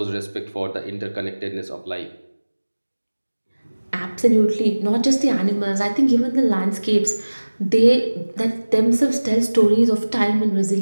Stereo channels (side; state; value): both; inverted; correlation -1.00